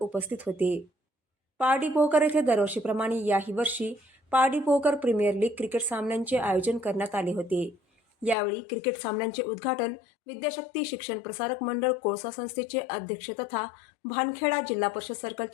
उपस्थित होते। पारडी पोहकर येथे दरवर्षीप्रमाणे याही वर्षी पारडी पोहकर प्रीमियर लीग क्रिकेट सामन्यांचे आयोजन करण्यात आले होते। यावेळी क्रिकेट सामन्यांचे उद्घाटन विद्याशक्ती शिक्षण प्रसारक मंडळ कोळसा संस्थेचे अध्यक्ष तथा भानखेडा जिल्हा परिषद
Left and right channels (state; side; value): drops out; right; at 8.3 s